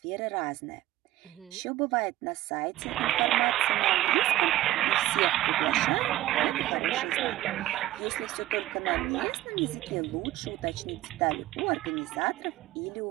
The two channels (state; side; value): quieter; left; 15.2 dB